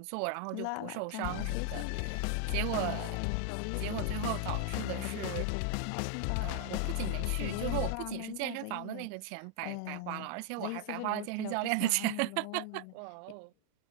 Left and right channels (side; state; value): both; different; correlation 0.00